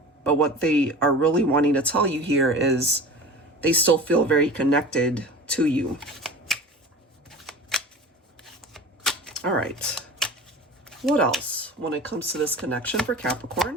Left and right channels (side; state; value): both; normal; correlation 0.36